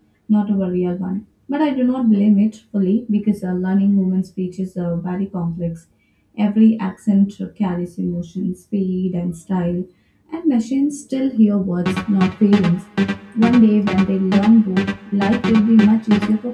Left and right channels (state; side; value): identical; both; correlation 1.00